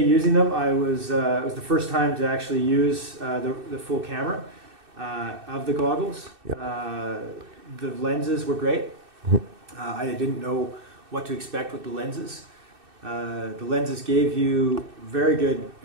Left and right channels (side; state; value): left; late; 2.6 ms